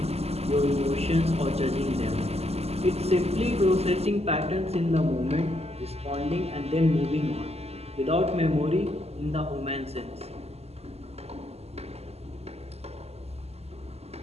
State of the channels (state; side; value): late; left; 0.30 ms